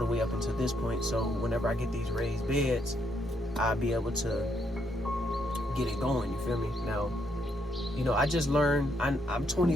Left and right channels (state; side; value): normal; both; correlation 0.75